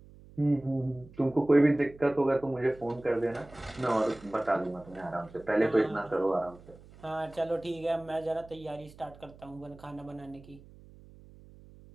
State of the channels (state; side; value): noise; right; hum, 22 dB below the sound